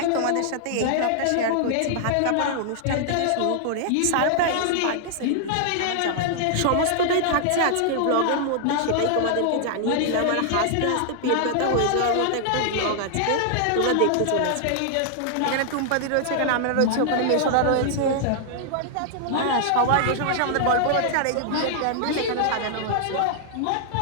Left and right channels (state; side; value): different; both; correlation -0.01